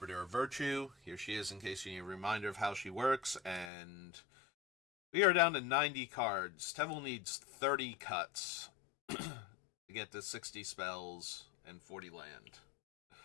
of Virtue. Here she is in case you need a reminder of how she works. And we are down to 90 cards. Teval needs 30 cuts to get to 60 spells and 40 land.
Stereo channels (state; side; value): drops out; right; at 3.7 s